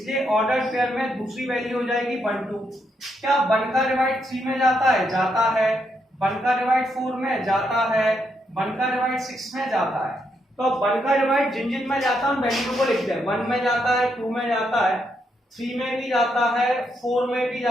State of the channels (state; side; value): normal; both; correlation 0.78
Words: ऑर्डर पेयर में दूसरी वैल्यू हो जाएगी 1, 2। क्या 1 का डिवाइड 3 में जाता है, जाता है। 1 का डिवाइड 4 में जाता है, 1 का डिवाइड 6 में जाता है। तो अब 1 का डिवाइड जिन जिन में जाता है उन वैल्यू को लिखते हैं। 1 में जाता है, 2 में जाता है, 3 में भी जाता है, 4 में भी